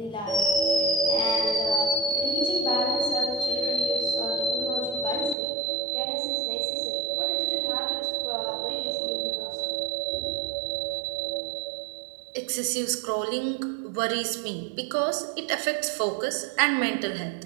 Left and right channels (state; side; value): drops out; left; at 5.4 s